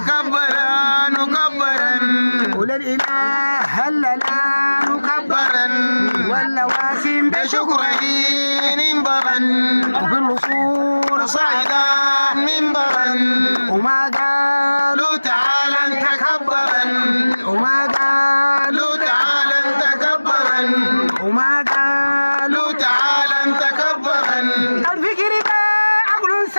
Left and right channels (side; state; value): both; inverted; correlation -1.00